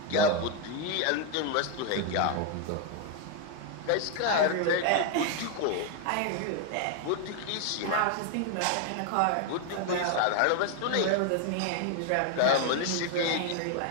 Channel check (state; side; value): different; both; correlation 0.01